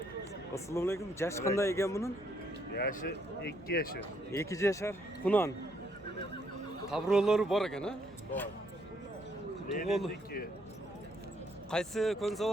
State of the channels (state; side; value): noise; left; hum, 23 dB below the sound